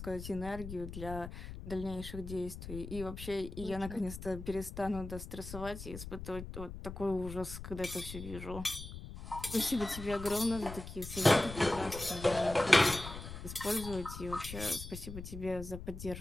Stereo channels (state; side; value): noise; left; rumble, 10 dB below the sound